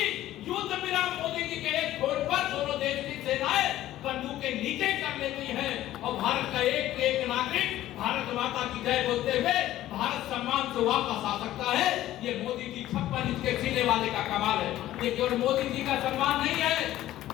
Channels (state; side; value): quieter; right; 14.1 dB